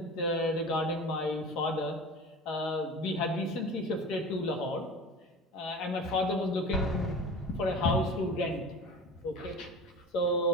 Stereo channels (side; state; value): both; normal; correlation 0.36